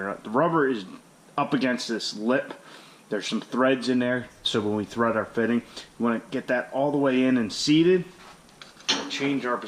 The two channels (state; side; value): identical; both; correlation 1.00